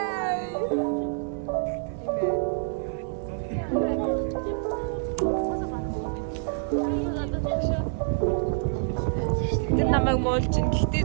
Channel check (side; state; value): left; silent; 60 dB below the other